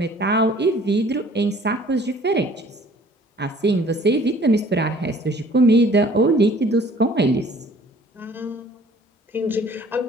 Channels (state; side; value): normal; both; correlation 0.54